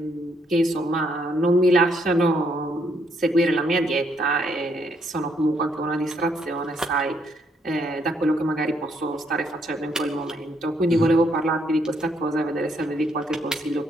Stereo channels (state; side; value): normal; both; correlation 0.72